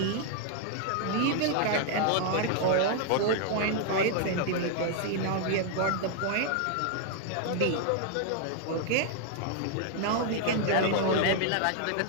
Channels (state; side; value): different; both; correlation 0.00